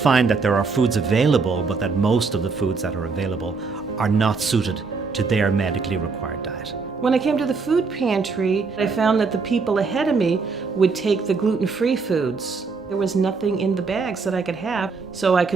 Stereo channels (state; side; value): quieter; left; 4.6 dB